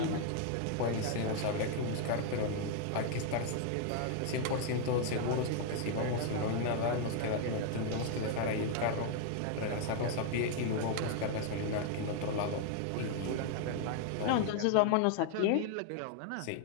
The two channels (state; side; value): different; both; correlation 0.00